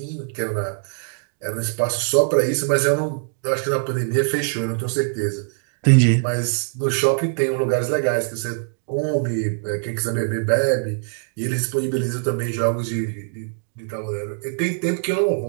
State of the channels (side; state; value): left; silent; digital silence